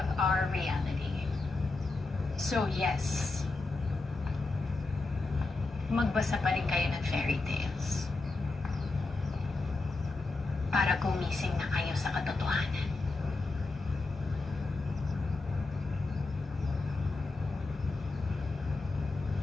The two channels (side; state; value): right; quieter; 3.4 dB